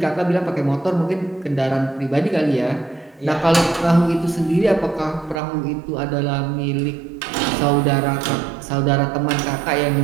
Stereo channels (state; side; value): drops out; left; at 5.4 s